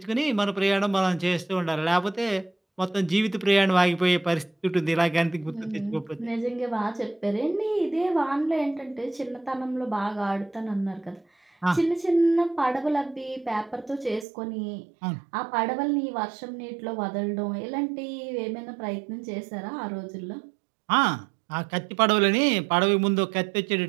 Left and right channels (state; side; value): drops out; left; at 14.2 s